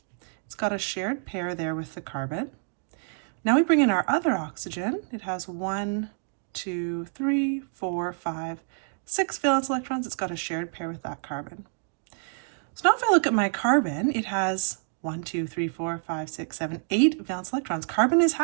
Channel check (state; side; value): silent; left; 59 dB below the other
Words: It's got a shared pair there with the carbon. Now we bring in our other oxygen. It has 1, 2, 3, 4, 5, 6 valence electrons. It's got a shared pair with that carbon. So now if I look at my carbon, it has 1, 2, 3, 4, 5, 6, 7, 8 valence electrons. Carbon is